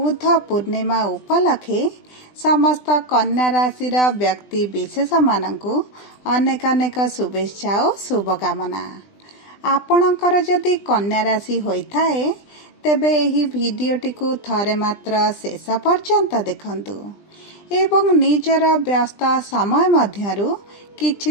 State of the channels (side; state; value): right; late; 20 ms